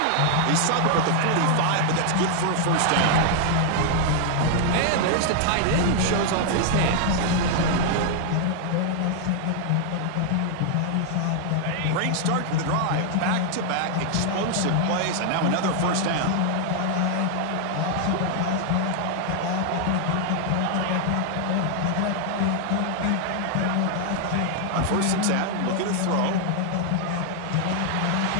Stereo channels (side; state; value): both; different; correlation 0.00